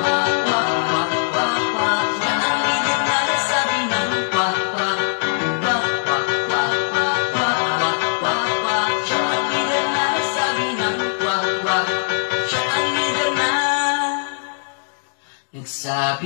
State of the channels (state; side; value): silent; right; digital silence